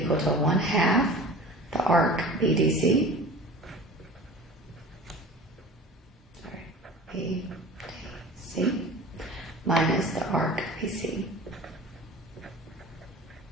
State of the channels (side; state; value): both; normal; correlation 0.40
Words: equal to 1/2 the arc BDC. BDC minus the arc BC.